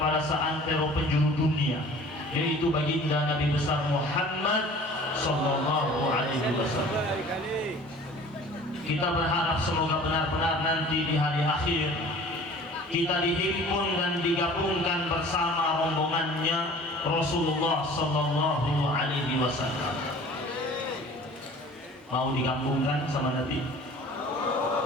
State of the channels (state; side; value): normal; both; correlation 0.46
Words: seantero penjuru dunia, yaitu baginda Nabi besar Muhammad sallallahu alaihi wasallam. Kita berharap semoga benar-benar nanti di hari akhir kita dihimpun dan digabungkan bersama rombongannya Rasulullah sallallahu alaihi wasallam. Mau digabungkan sama Nabi?